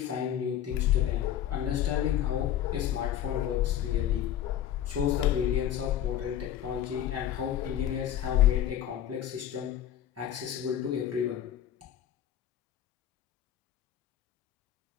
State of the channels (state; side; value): quieter; right; 10.9 dB